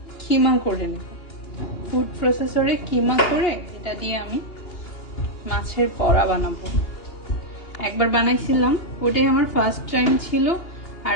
কিমা করে নেব, ফুড প্রসেসরে কিমা করে এটা দিয়ে আমি মাছের বড়া বানাবো। একবার বানাইছিলাম, ওটাই আমার ফার্স্ট টাইম ছিল,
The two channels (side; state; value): right; late; 2.8 ms